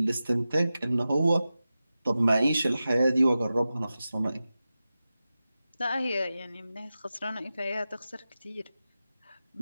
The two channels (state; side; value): inverted; both; correlation -0.94